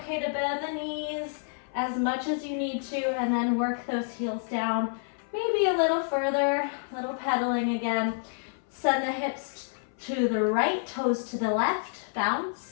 to bend the knees as much as you need to and then work those heels down. Maybe a little further, a little pedaling again. Send the hips to the right, toes to the left,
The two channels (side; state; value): right; silent; 57 dB below the other